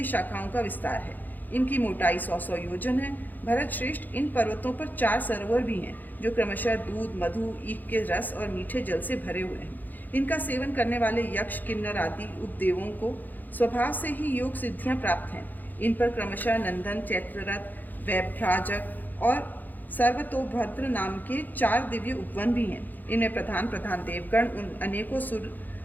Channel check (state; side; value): late; right; 0.085 ms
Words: शाखाओं का विस्तार है। इनकी मोटाई 100 योजन है। भरत श्रेष्ठ, इन पर्वतों पर 4 सरोवर भी हैं, जो क्रमशः दूध, मधु, ईख के रस और मीठे जल से भरे हुए हैं। इनका सेवन करने वाले यक्ष, किन्नर आदि उपदेवों को स्वभाव से ही योग सिद्धियाँ प्राप्त हैं। इन पर क्रमशः नंदन, चैत्ररथ, वैभ्राजक और सर्वतोभद्र नाम के 4 दिव्य उपवन भी हैं। इनमें प्रधान देवगण उन अनेकों